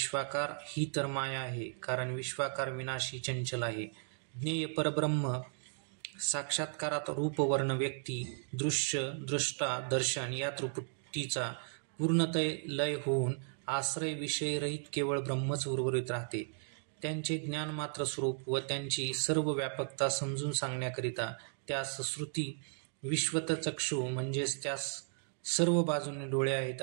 ही तर माया आहे, कारण विश्वाकार विनाशी चंचल आहे. ज्ञेय परब्रह्म साक्षात्कारात रूप, वर्ण, व्यक्ती, दृश्य, द्रष्टा, दर्शन या त्रिपुटीचा पूर्णतः लय होऊन आश्रय विषयरहित केवळ ब्रह्मच उर्वरित राहते. त्यांचे ज्ञानमात्र स्वरूप व त्यांची सर्व व्यापकता समजून सांगण्याकरिता त्यास श्रुती विश्वतचक्षु म्हणजेच त्यास सर्व बाजूने डोळे आहेत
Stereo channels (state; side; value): silent; left; digital silence